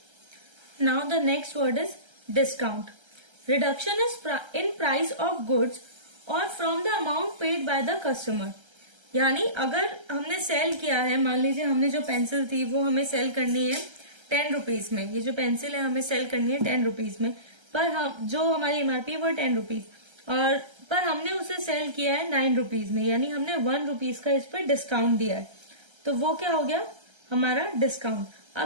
Now the next word is discount. Reduction is in price of goods or from the amount paid by the customer. यानी अगर हमने cell किया है, मान लीजिए हमने जो pencil थी वो हमें सेल करनी है 10 रुपीज में, ये जो पेंसिल है हमें सेल करनी है 10 रुपीज में, पर हम जो हमारी एमआरपी वो 10 रुपीज, और पर हमने उसे सेल किया है 9 रुपीज में, यानी हमने 1 रुपीज का इस पर डिस्काउंट दिया है, तो वो क्या हो गया हमारा डिस्काउंट।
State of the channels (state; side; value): late; left; 1.3 ms